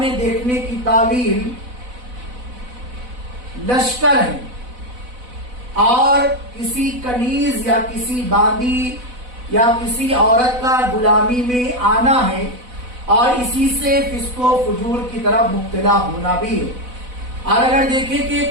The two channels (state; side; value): late; left; 4.0 ms